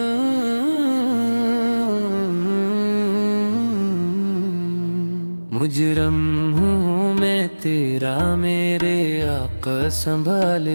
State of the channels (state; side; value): inverted; both; correlation -1.00